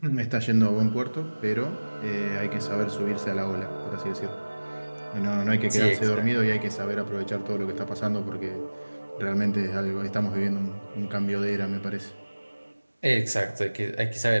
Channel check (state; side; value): inverted; both; correlation -1.00